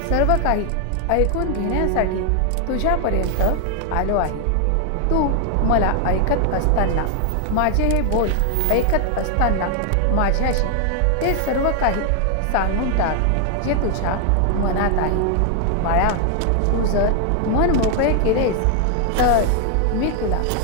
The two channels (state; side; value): different; both; correlation 0.00